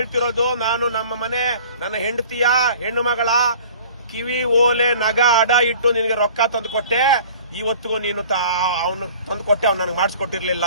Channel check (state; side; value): inverted; both; correlation -0.47